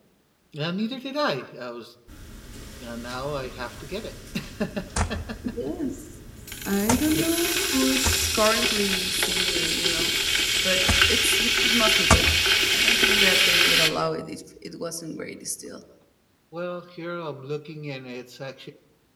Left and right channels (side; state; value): both; identical; correlation 1.00